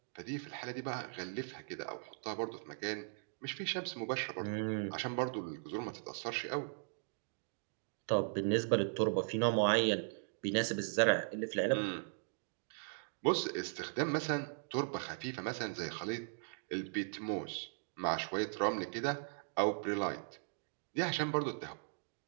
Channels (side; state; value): left; silent; digital silence